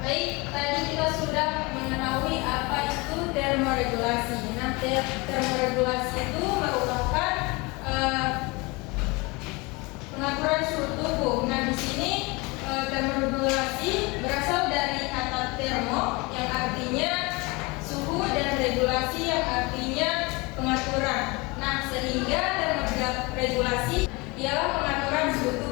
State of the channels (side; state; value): right; quieter; 25.8 dB